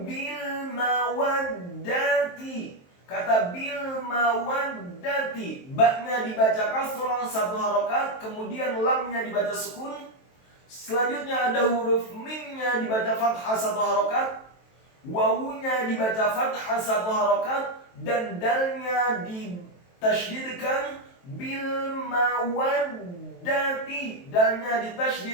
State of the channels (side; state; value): right; late; 23 ms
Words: bil mawaddati. Kata bil mawaddati, ba-nya dibaca kasrah 1 harokat, kemudian lamnya dibaca sukun. Selanjutnya ada huruf mimnya dibaca fathah 1 harokat, wawunya dibaca fathah 1 harokat, dan dalnya ditasydidkan bil mawaddati, dalnya